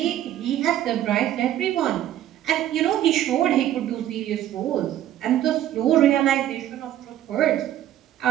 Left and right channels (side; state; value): left; quieter; 12.1 dB